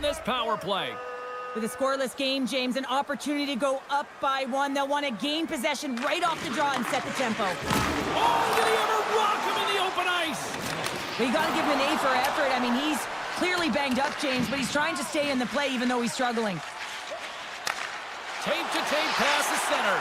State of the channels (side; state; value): both; identical; correlation 1.00